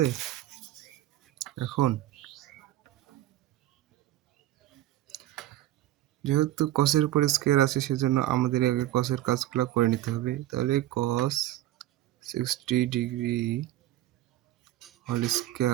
এখন যেহেতু কসের উপরে স্কয়ার আছে সেজন্য আমাদের আগে কসের কাজগুলো করে নিতে হবে। তাহলে cos 60 degree whole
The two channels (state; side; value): quieter; left; 14.6 dB